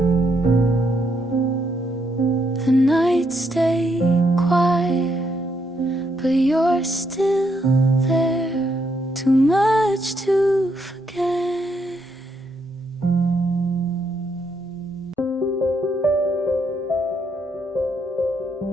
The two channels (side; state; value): both; normal; correlation 0.76